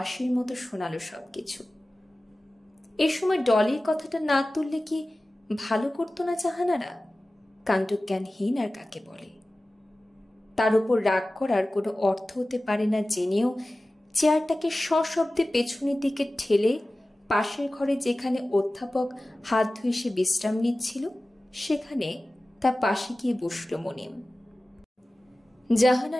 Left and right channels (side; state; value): both; normal; correlation 0.96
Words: মতো শোনালো সবকিছু। এ সময় ডলির কথাটা না তুললে কি ভালো করতো না জাহানারা? কাণ্ডজ্ঞানহীন আর কাকে বলে? তার উপর রাগ করার কোনো অর্থ হতে পারে না জেনেও চেয়ারটাকে সশব্দে পেছনের দিকে ঠেলে পাশের ঘরে যেখানে অধ্যাপক হাত ধুয়ে সে বিশ্রাম নিচ্ছিল সেখানে তার পাশে গিয়ে বসল মনিম।